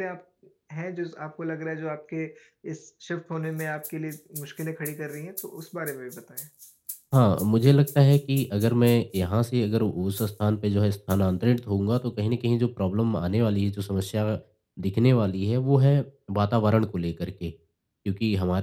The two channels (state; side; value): identical; both; correlation 1.00